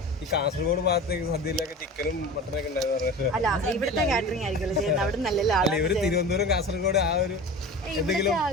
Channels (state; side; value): normal; both; correlation 0.34